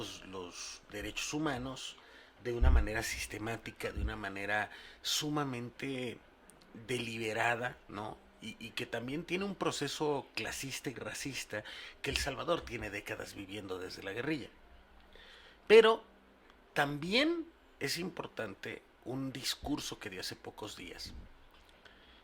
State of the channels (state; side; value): identical; both; correlation 1.00